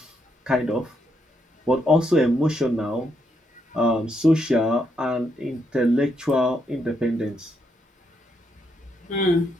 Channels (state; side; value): normal; both; correlation 0.78